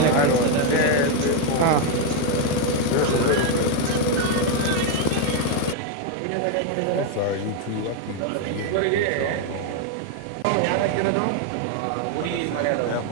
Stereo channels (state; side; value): different; both; correlation 0.01